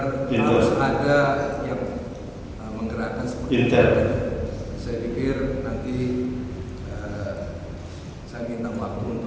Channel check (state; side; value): identical; both; correlation 1.00